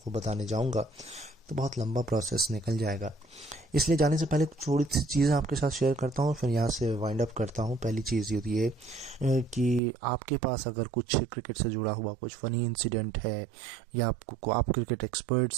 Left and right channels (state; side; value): drops out; left; at 9.8 s